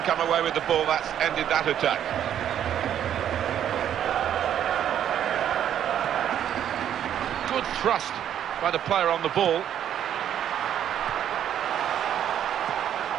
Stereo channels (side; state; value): left; quieter; 10.1 dB